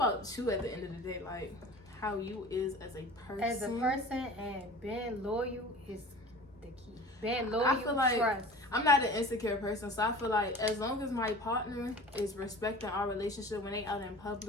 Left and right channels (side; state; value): both; normal; correlation 0.40